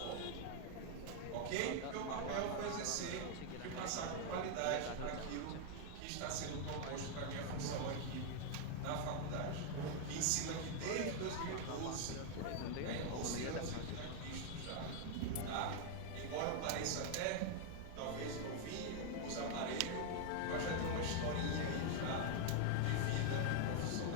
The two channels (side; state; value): both; different; correlation 0.00